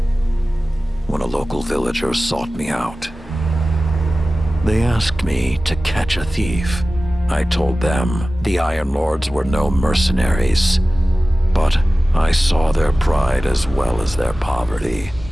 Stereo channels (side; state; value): both; normal; correlation 0.96